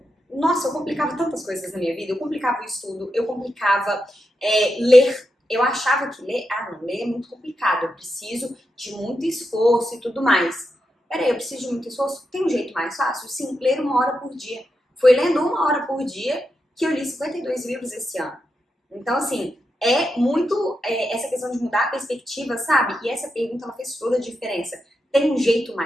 complicava tantas coisas na minha vida. Eu complicava o estudo, eu complicava ler. Eu achava que ler é muito complicado. Eu preciso de muito esforço e tudo mais. Peraí, eu preciso de muito esforço? Tem um jeito mais fácil? Sim, ler 1 hora por dia. Foi lendo 1 hora por dia que eu li 52 livros esse ano. Então, assim, é muito essa questão de mudar a perspectiva, sabe? E essa pergunta, ela fez toda a diferença. Tem um jeito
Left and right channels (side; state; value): both; normal; correlation 0.86